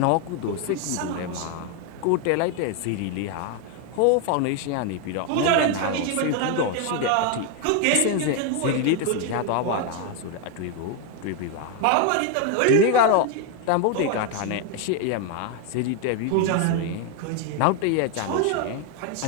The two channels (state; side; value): different; both; correlation 0.01